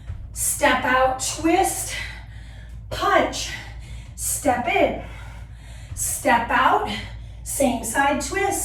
step out, twist, punch, step in, step out, same side,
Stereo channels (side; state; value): both; identical; correlation 1.00